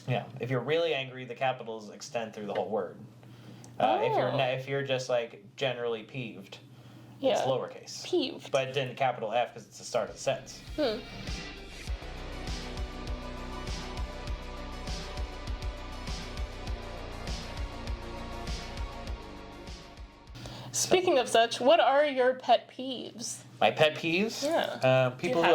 Yeah, if you're really angry, the capitals extend through the whole word. If you're just like generally peeved, it's lowercase. Peeved. But then capital F because it's the start of the sentence. Speaking of such, what are your pet peeves? My pet peeves? Yeah. People who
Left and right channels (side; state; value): both; identical; correlation 1.00